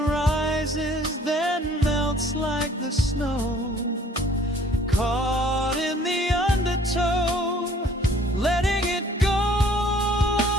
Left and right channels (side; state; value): both; normal; correlation 0.56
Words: then melts like the snow, caught in the undertow, letting it go.